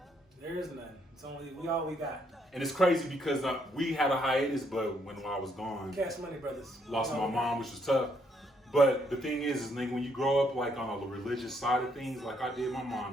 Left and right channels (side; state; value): both; normal; correlation 0.72